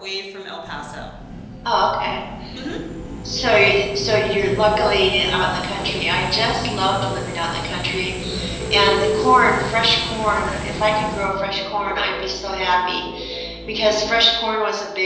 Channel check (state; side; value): identical; both; correlation 1.00